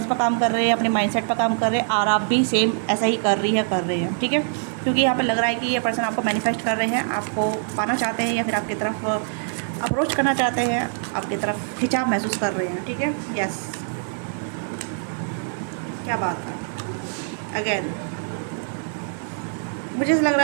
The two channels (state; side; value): silent; left; digital silence